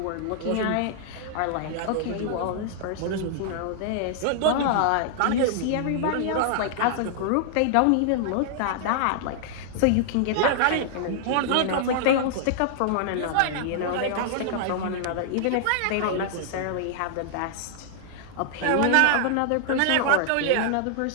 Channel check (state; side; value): different; both; correlation -0.01